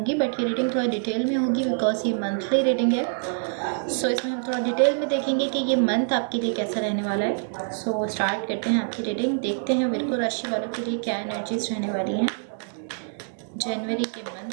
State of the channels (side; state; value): left; silent; 59 dB below the other